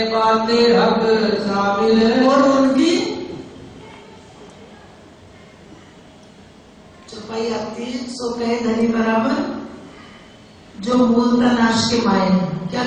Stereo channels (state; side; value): identical; both; correlation 1.00